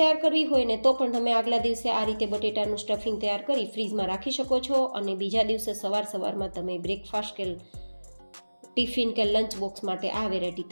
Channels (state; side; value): inverted; both; correlation -1.00